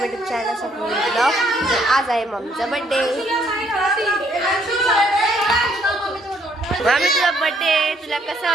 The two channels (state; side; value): normal; both; correlation 0.67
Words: YouTube channel Swapnil blog. आज आहे मम्मीचा बर्थडे. मम्मी तुझा बर्थडे, तुला कसं